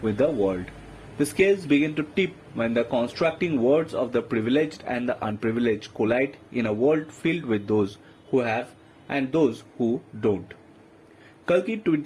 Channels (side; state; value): both; identical; correlation 1.00